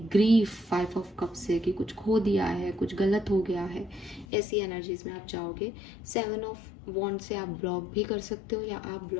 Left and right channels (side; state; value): right; drops out; at 4.2 s